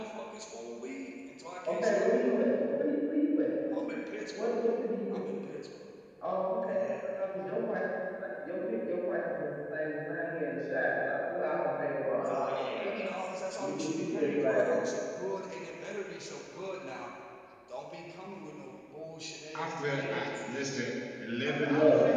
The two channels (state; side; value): identical; both; correlation 1.00